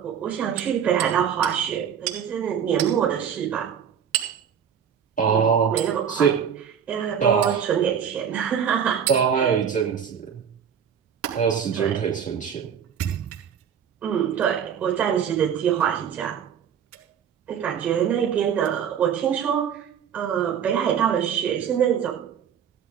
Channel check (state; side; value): quieter; left; 8.1 dB